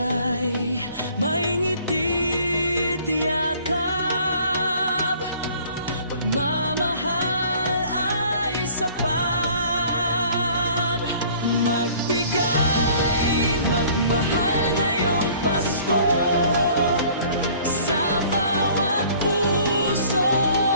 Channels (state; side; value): inverted; both; correlation -0.53